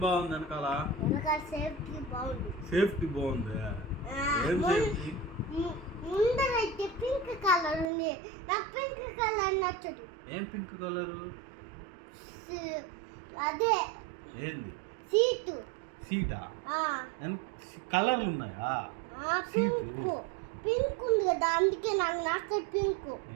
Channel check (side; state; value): left; drops out; at 7.9 s